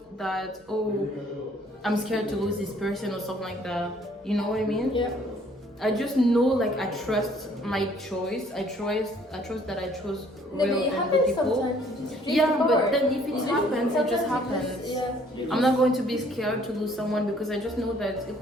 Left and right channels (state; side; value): normal; both; correlation 0.60